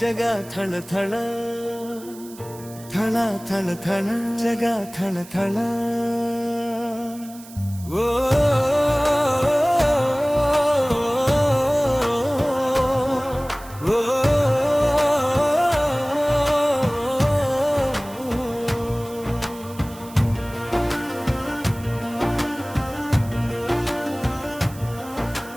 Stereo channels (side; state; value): right; noise; hiss, 19 dB below the sound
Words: ಜಗ ಥಳ ಥಳ ಥಳ ಥಳ ಥಳ ಜಗ ಥಳ ಥಳ ಓ